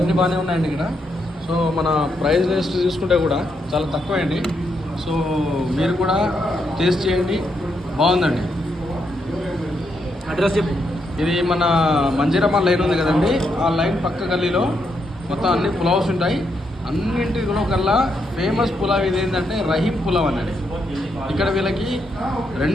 బాగానే ఉన్నాయండి ఇక్కడ. సో మన ప్రైస్ లిస్ట్ చూసుకుంటే కూడా చాలా తక్కువ అండి. సో మీరు కూడా టేస్ట్ చేయండి, బాగుందండి. అడ్రస్ చెప్పు. ఇది మన మంజీరమ్మ లైన్ ఉంది కదండి, ఆ లైన్ పక్క గల్లీలో మొత్తం అన్ని పులావ్స్ ఉంటాయి. అన్నింటిలో కల్లా ఫేమస్ పులావ్ ఇది ఏంటంటే రహీం పులావ్ అన్నది. ఇక్కడ వీళ్ళకి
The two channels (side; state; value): both; normal; correlation 0.79